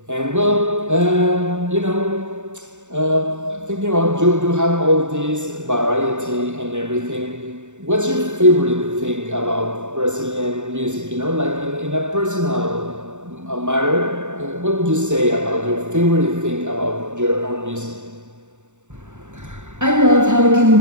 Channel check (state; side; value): late; left; 0.84 ms